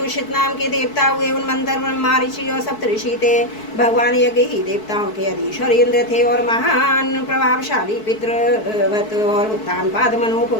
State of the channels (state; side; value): late; right; 4.6 ms